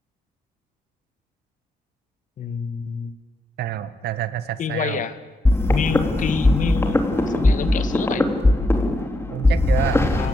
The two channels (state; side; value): normal; both; correlation 0.82